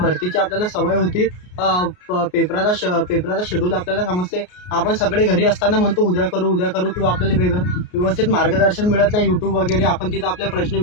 आपल्याला सवय होती. पेपराचा शेड्यूल आपल्याला समजते. आपण सगळे घरी असताना म्हणतो उद्या करू किंवा आपल्याला व्यवस्थित मार्गदर्शन मिळत नाही. यूट्यूब वगैरे आपण तिथं आपले प्रश्न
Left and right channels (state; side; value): late; right; 33 ms